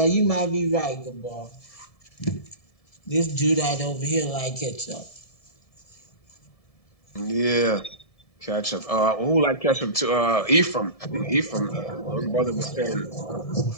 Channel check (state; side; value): late; right; 1.7 ms